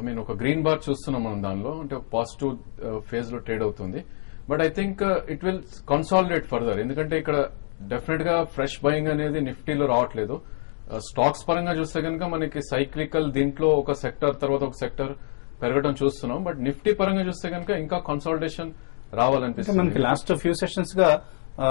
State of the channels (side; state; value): right; silent; digital silence